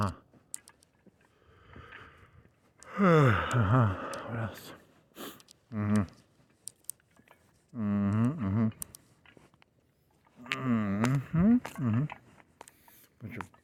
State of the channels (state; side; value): identical; both; correlation 1.00